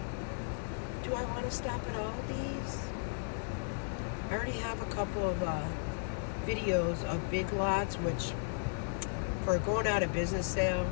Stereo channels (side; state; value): right; silent; digital silence